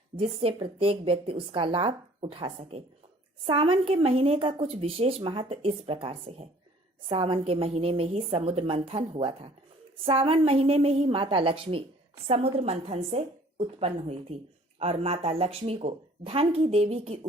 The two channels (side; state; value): both; normal; correlation 0.54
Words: जिससे प्रत्येक व्यक्ति उसका लाभ उठा सके। सावन के महीने का कुछ विशेष महत्व इस प्रकार से है। सावन के महीने में ही समुद्र मंथन हुआ था। सावन महीने में ही माता लक्ष्मी समुद्र मंथन से उत्पन्न हुई थी और माता लक्ष्मी को धन की देवी की